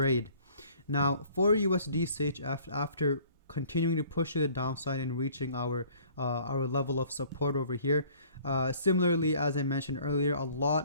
Now for USDCHF, after continuing to push to the downside and reaching our level of support over here. Similarly, as I mentioned earlier, a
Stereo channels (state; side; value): inverted; both; correlation -0.54